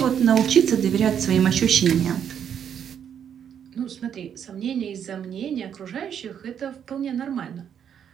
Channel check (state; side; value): quieter; left; 8.5 dB